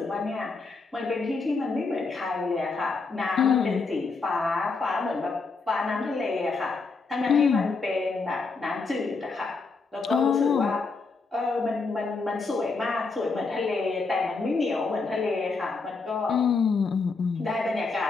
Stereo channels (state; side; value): quieter; right; 4.2 dB